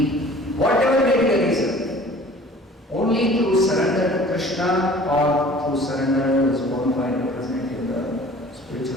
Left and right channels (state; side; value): normal; both; correlation 0.48